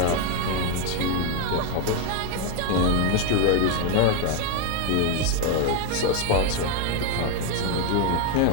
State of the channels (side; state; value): both; different; correlation 0.01